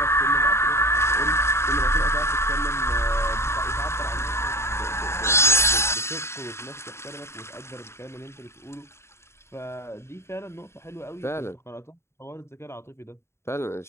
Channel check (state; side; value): late; right; 0.13 ms